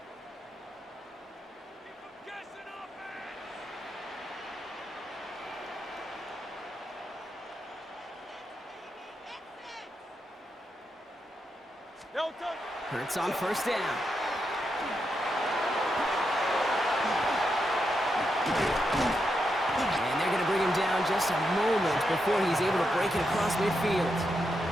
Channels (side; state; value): both; normal; correlation 0.84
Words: Hurts on 1st down. And they're going to bring him down just a moment before he's able to break it across midfield.